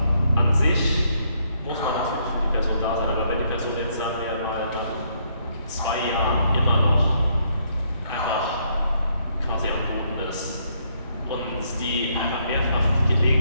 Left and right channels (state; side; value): inverted; both; correlation -0.72